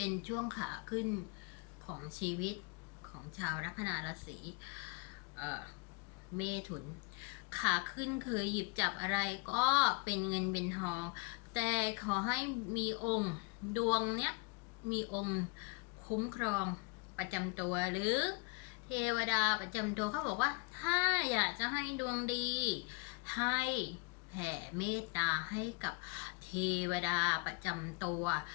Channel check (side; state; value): right; quieter; 31.2 dB